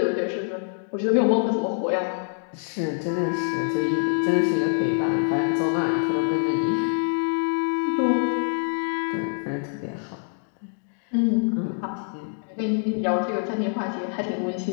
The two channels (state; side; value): silent; right; 58 dB below the other